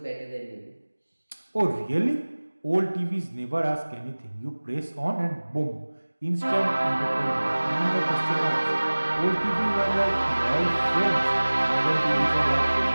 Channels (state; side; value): inverted; both; correlation -1.00